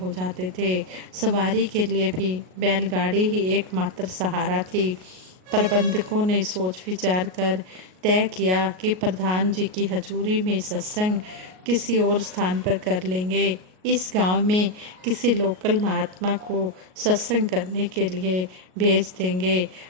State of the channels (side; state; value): left; late; 38 ms